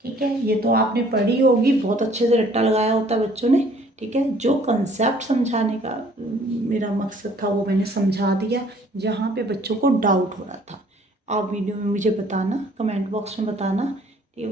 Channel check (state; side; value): normal; both; correlation 0.58